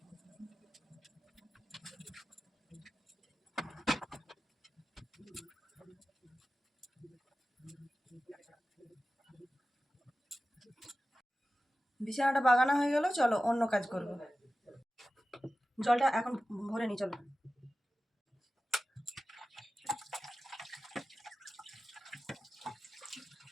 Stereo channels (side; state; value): both; normal; correlation 0.94